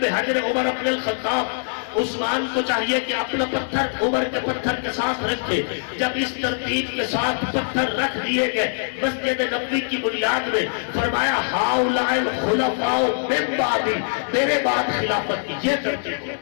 حجر عمر بن الخطاب، عثمان کو چاہیے کہ اپنا پتھر عمر کے پتھر کے ساتھ رکھے۔ جب اس ترتیب کے ساتھ پتھر رکھ دیے گئے مسجد نبوی کی بنیاد میں، فرمایا ہؤلاء الخلفاء من بعدی، میرے بعد خلافت کی یہ ترتیب ہے۔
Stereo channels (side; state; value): right; silent; digital silence